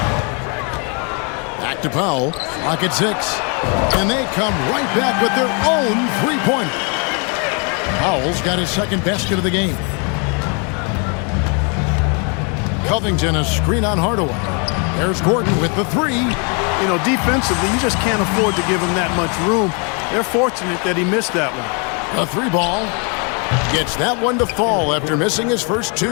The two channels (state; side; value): quieter; right; 35.7 dB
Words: Back to Powell. Clock at 6. And they come right back with their own three-pointer. Powell's got his second basket of the game. Covington a screen on Hardaway. There's Gordon with the three. You know, defensively, you just can't afford to give him that much room. They're fortunate that he missed that one. The three ball gets that one to fall after missing his first